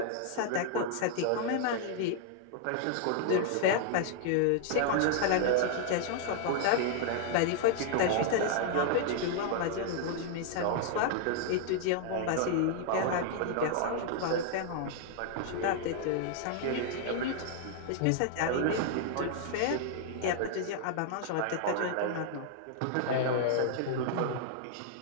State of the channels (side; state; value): both; different; correlation 0.00